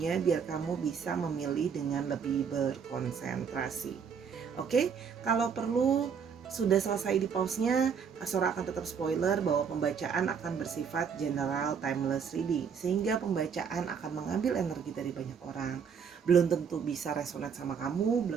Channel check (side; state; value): left; quieter; 6.7 dB